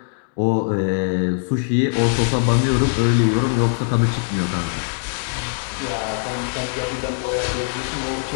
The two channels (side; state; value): right; silent; digital silence